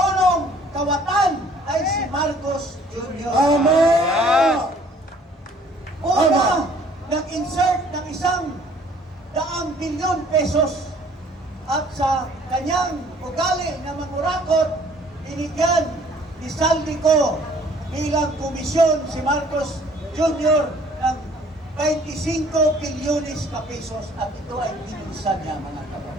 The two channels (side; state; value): both; normal; correlation 0.57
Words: kawatan ay si Marcos Jr. Una, nag-insert ng 100 bilyon pesos at sa kanyang ugali na mangurakot, binigyan ni Saldico bilang komisyon si Marcos Jr. ng 25 bilyones na pesos at ito ay binusan niya, mga